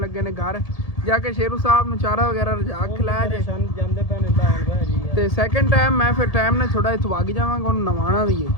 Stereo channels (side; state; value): right; late; 1.7 ms